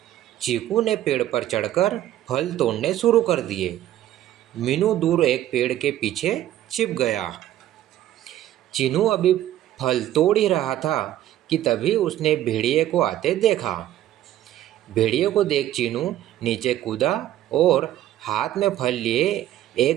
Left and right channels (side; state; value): left; quieter; 13.0 dB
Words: चीकू ने पेड़ पर चढ़कर फल तोड़ने शुरू कर दिए। मीनू दूर एक पेड़ के पीछे छिप गया। चीनू अभी फल तोड़ ही रहा था कि तभी उसने भेड़िए को आते देखा। भेड़िए को देख चीनू नीचे कूदा और हाथ में फल लिए